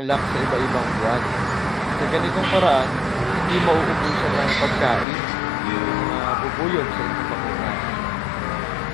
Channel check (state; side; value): drops out; right; at 5.1 s